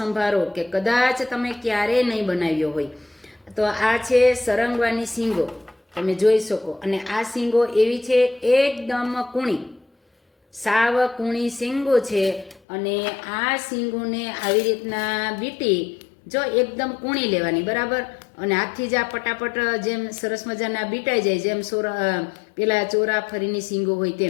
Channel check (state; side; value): drops out; right; at 12.6 s